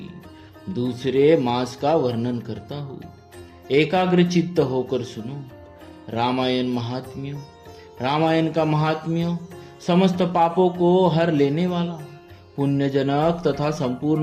दूसरे मास का वर्णन करता हूँ। एकाग्र चित्त होकर सुनो। रामायण का महात्म्य समस्त पापों को हर लेने वाला, पुण्यजनक तथा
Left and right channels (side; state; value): both; identical; correlation 1.00